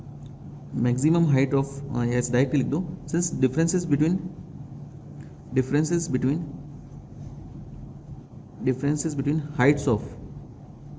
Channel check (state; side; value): identical; both; correlation 1.00